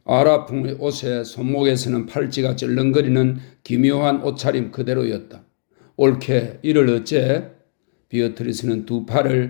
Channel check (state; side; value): silent; right; 62 dB below the other